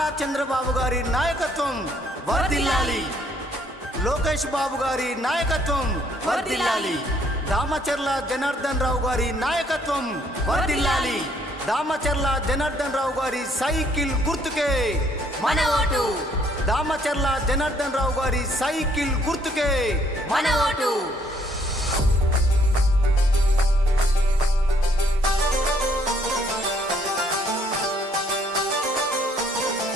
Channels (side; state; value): both; normal; correlation 0.66